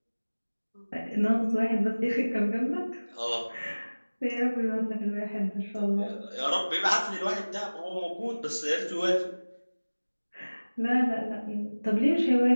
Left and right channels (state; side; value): inverted; both; correlation -1.00